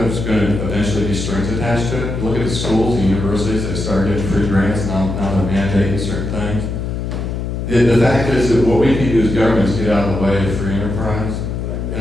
there's going to eventually be strings attached to it. Look at the schools, the universities, they start getting free grants, now they're mandating certain things. The fact is that what we can do as governments get out of the way of free enterprise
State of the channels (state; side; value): noise; left; hum, 4 dB below the sound